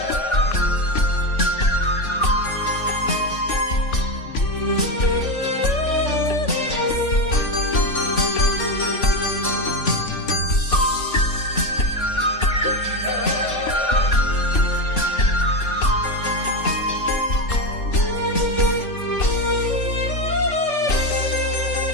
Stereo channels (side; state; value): right; late; 3.5 ms